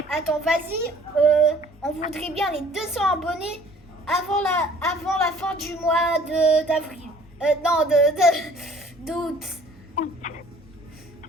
attends, vas-y. On voudrait bien les 200 abonnés avant la fin du mois d'avril. Non, d'août.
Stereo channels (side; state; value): both; normal; correlation 0.54